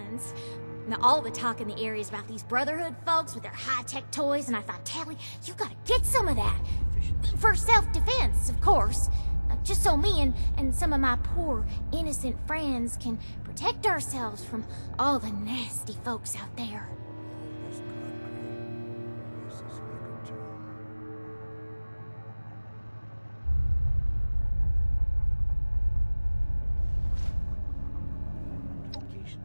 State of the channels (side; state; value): both; inverted; correlation -1.00